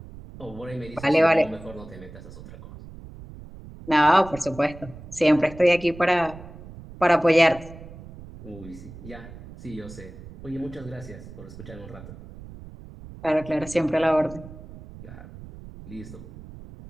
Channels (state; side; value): noise; right; rumble, 16 dB below the sound